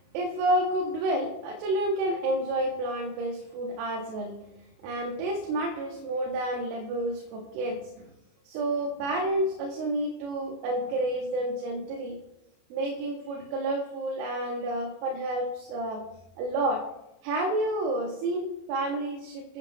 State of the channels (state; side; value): late; left; 32 ms